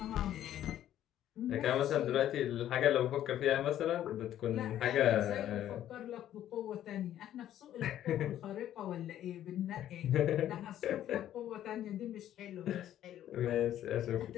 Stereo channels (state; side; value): quieter; right; 11.8 dB